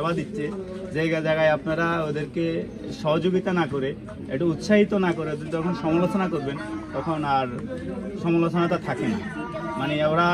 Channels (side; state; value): both; identical; correlation 1.00